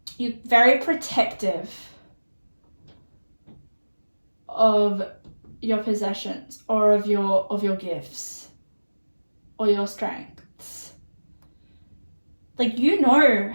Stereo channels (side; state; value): both; inverted; correlation -1.00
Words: you're very protective of your possessions or of your gifts or your strengths. Like, you know